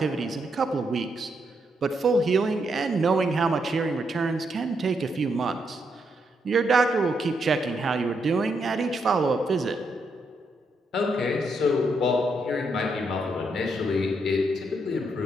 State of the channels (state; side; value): normal; both; correlation 0.79